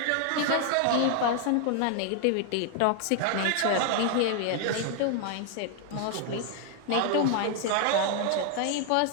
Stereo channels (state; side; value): different; both; correlation 0.00